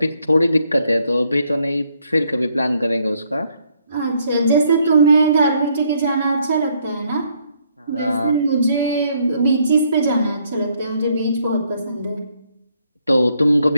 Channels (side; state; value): both; inverted; correlation -0.70